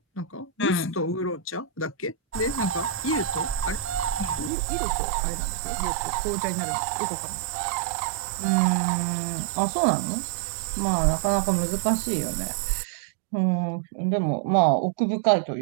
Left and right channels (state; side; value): drops out; left; at 4.5 s